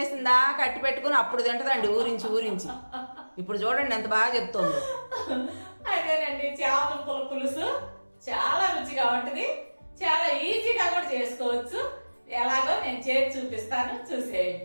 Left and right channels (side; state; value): both; inverted; correlation -1.00